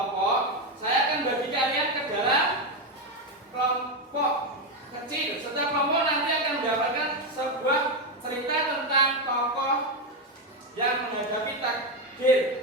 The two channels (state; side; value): normal; both; correlation 0.09